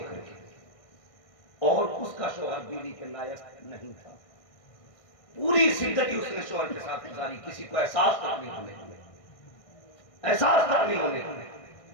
کے، اور اس کا شوہر بیوی کے لائق نہیں تھا، پوری زندگی اس نے شوہر کے ساتھ گزاری، کسی کو احساس تک نہیں ہونے دیا، احساس تک نہیں ہونے دیا۔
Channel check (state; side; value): late; right; 1.6 ms